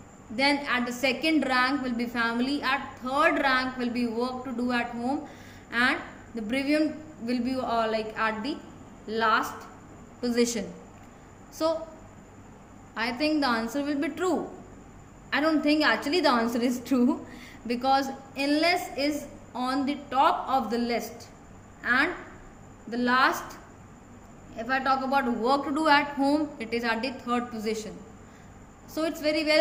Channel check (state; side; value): identical; both; correlation 1.00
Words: then at the second rank will be family, at third rank will be work to do at home, and the bereavement will be like at the last position. So I think the answer will be true. I don't think actually the answer is true because illness is on the top of the list, and the last, if I talk about work to do at home, it is at the third position. So it's very